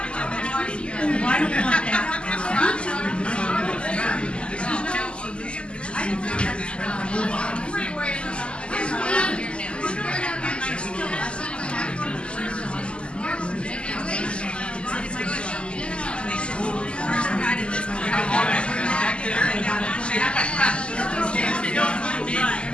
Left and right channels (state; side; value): late; right; 0.052 ms